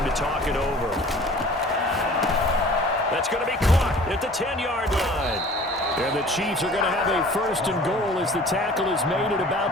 to talk it over. That's going to be caught at the 10-yard line. And the Chiefs are going to have a 1st and goal as the tackle is made at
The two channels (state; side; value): normal; both; correlation 0.47